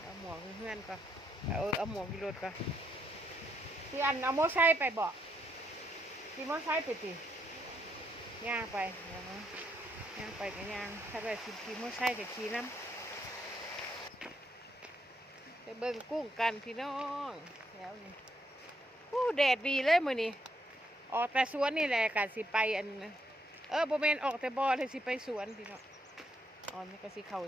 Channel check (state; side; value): normal; both; correlation 0.77